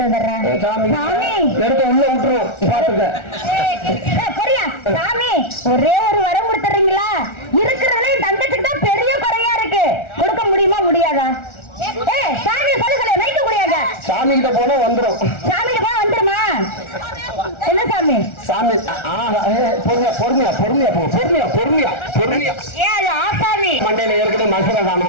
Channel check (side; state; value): right; late; 1.4 ms